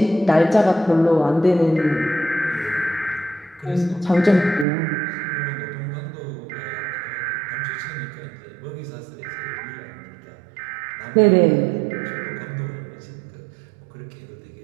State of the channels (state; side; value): drops out; left; at 4.7 s